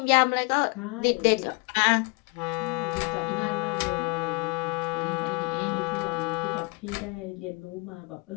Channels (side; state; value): right; quieter; 30.3 dB